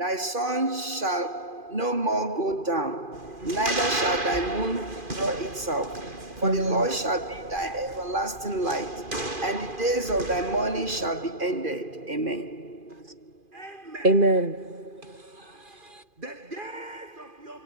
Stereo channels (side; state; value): left; late; 2.5 ms